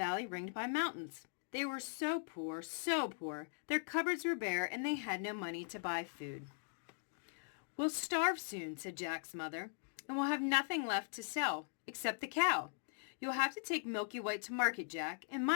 ringed by mountains. They were so poor, their cupboards were bare and they had no money to buy food. "We'll starve soon," said Jack's mother, "and we'll have nothing left to sell, except the cow. You'll have to take Milky White to market, Jack, and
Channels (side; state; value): right; silent; digital silence